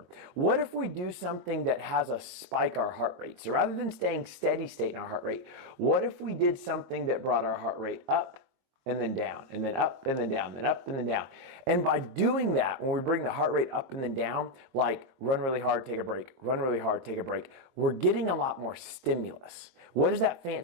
what if we do something that has us spike our heart rate? So rather than staying steady state in our heart rate, what if we did something that brought our heart rate up and then down, and then up and then down, then up and then down? And by doing that, when we bring the heart rate up and then down, like run really hard, take a break, run really hard, take a break, we're getting a lot more stimulus. What does that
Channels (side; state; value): left; late; 22 ms